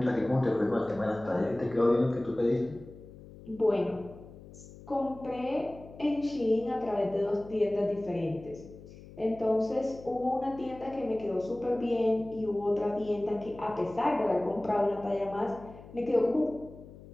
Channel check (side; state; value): left; noise; hum, 18 dB below the sound